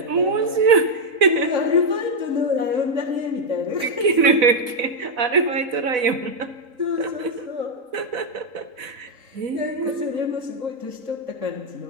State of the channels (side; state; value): left; late; 4.0 ms